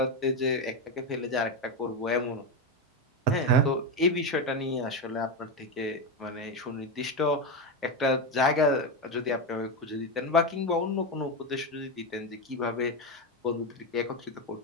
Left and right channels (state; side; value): normal; both; correlation 0.12